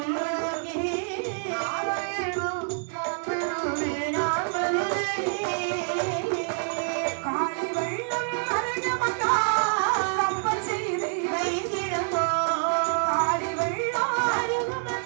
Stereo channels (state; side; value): silent; left; 60 dB below the other